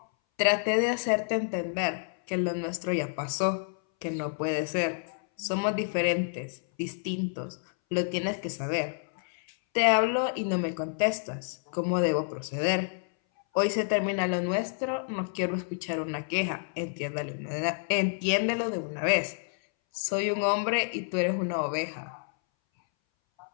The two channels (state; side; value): silent; right; 58 dB below the other